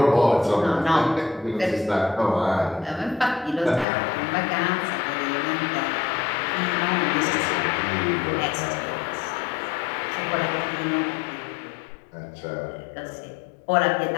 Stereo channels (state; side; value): drops out; right; at 3.9 s